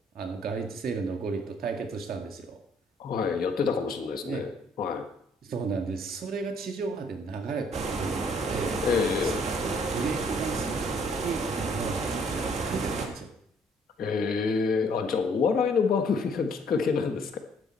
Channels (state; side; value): normal; both; correlation 0.63